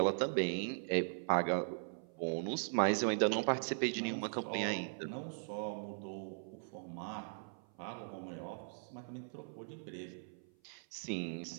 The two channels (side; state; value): left; silent; 51 dB below the other